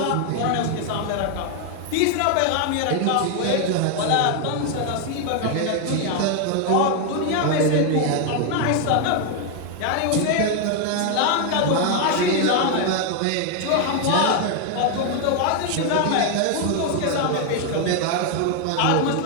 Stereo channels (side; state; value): both; different; correlation 0.00